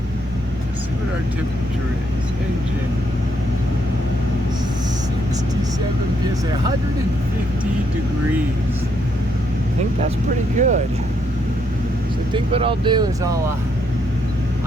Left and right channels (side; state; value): both; normal; correlation 0.74